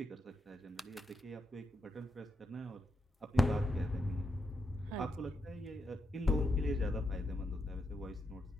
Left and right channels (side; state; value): both; normal; correlation 0.84